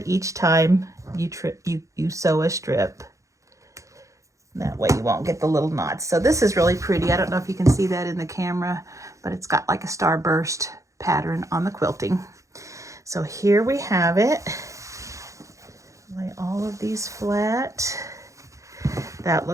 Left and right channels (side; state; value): left; late; 0.15 ms